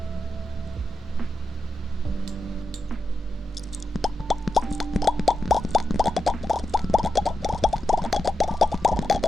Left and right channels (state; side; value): normal; both; correlation 0.89